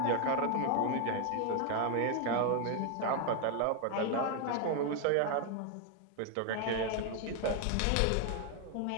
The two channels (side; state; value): both; different; correlation 0.00